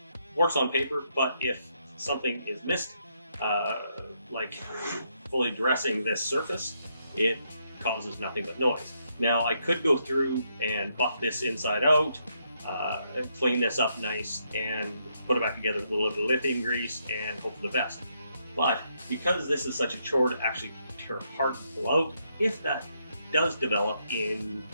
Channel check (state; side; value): inverted; both; correlation -0.77